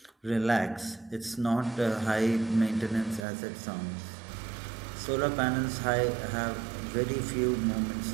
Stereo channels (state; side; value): drops out; left; at 3.2 s